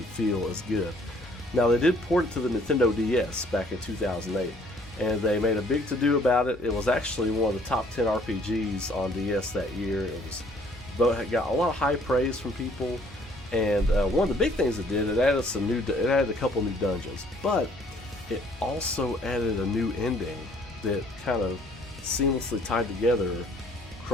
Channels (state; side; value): normal; both; correlation 0.60